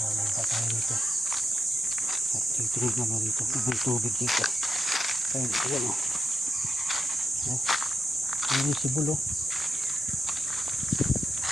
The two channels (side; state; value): both; normal; correlation 0.87